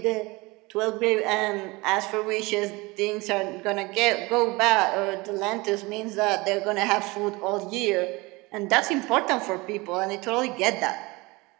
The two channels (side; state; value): left; quieter; 23.8 dB